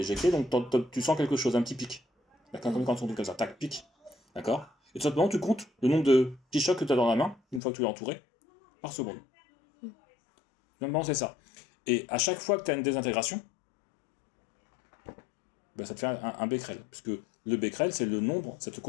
éjectée, donc tu sens quelque chose, un petit pic. D'accord. Comme quand on dit comme ça, tac, pic. D'accord. Et tout simplement, tu comptes le nombre de petits chocs que tu as dans la main, une fois que tu l'as entouré, par seconde. Normalement, c'est ça. Et à chaque fois que tu as une désintégration, ben, ça te fait un becquerel, puisque le becquerel, c'est le nombre, ça te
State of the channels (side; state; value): right; drops out; at 7.6 s